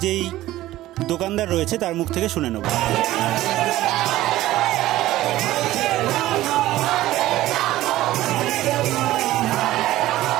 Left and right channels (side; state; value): left; quieter; 15.6 dB